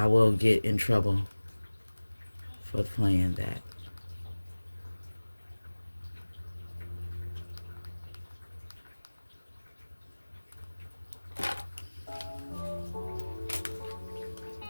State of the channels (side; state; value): both; inverted; correlation -1.00